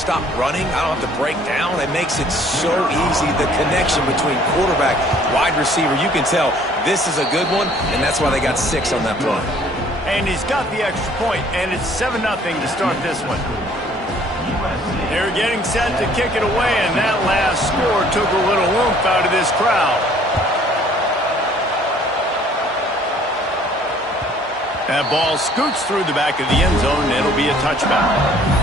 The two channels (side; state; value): both; normal; correlation 0.57